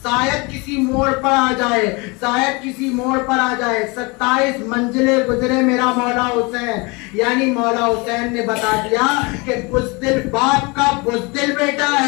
किसी मोड़ पर आ जाए, शायद किसी मोड़ पर आ जाए। 27 मंजिलें गुजरे मेरा मौला हुसैन, यानी मौला हुसैन ने बता दिया कि बुज़दिल बाप का बुज़दिल बेटा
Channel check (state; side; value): quieter; right; 27.6 dB